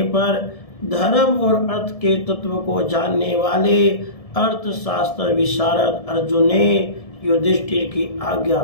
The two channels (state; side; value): late; right; 1.7 ms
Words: पर धर्म और अर्थ के तत्व को जानने वाले अर्थशास्त्र विशारद अर्जुन ने युधिष्ठिर की आज्ञा